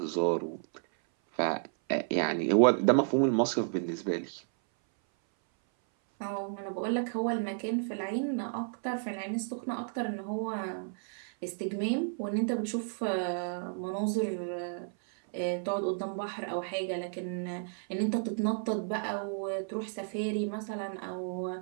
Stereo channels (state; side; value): silent; left; 56 dB below the other